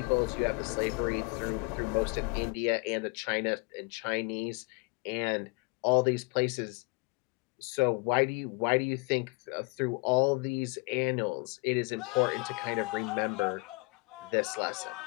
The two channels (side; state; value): right; quieter; 31.1 dB